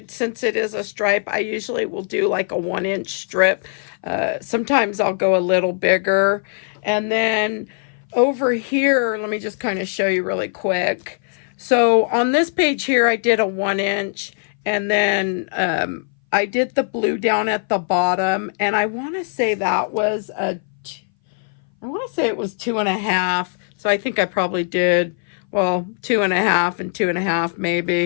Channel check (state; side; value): silent; right; 60 dB below the other